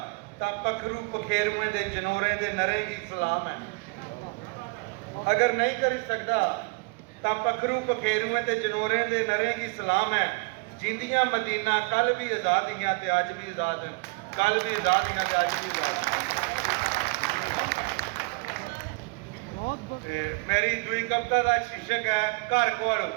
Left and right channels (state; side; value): quieter; left; 29.2 dB